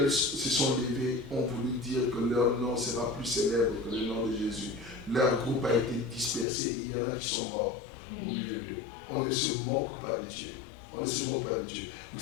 se sont levés, ont voulu dire que leur nom sera plus célèbre que le nom de Jésus. Leur groupe a été dispersé et il y en a qui sont morts au milieu d'eux. On ne se moque pas de Dieu. On ne se moque pas de Dieu. Vous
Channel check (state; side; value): drops out; right; at 6.5 s